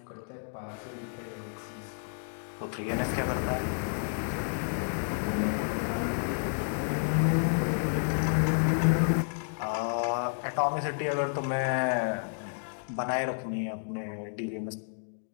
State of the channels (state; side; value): silent; right; digital silence